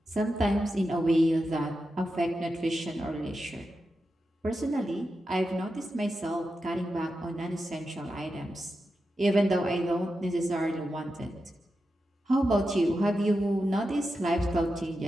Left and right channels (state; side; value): normal; both; correlation 0.89